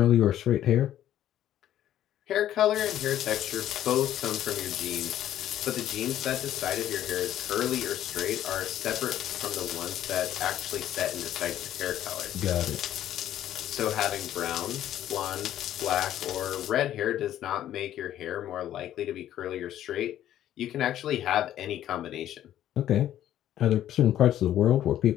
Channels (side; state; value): right; quieter; 11.9 dB